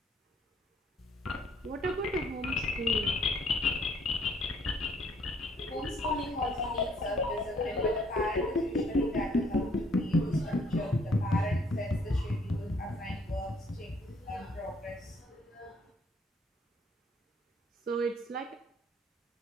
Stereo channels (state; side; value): normal; both; correlation 0.64